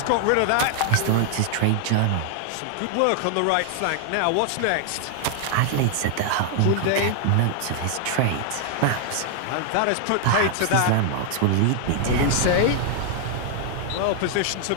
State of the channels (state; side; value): different; both; correlation 0.00